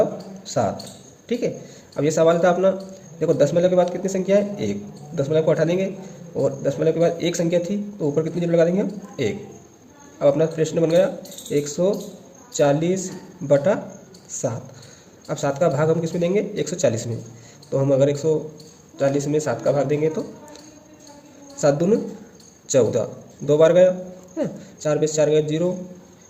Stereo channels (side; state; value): both; identical; correlation 1.00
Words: ठीक है। अब ये सवाल था अपना, देखो दशमलव के बाद कितनी संख्या है? 1, दशमलव को हटा देंगे और दशमलव के बाद एक संख्या थी तो ऊपर कितनी जीरो लगा देंगे हम? 1। अब अपना प्रश्न बन गया 140/7। अब 7 का भाग हम किस में देंगे? 140 में, तो हम अगर 140 में 7 का भाग देंगे तो 7 दूनी 14, 2 बार गया, 4 में से 4 गया 0,